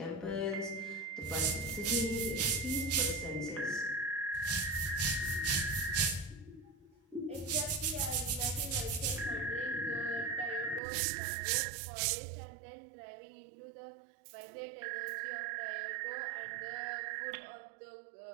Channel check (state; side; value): drops out; left; at 10.8 s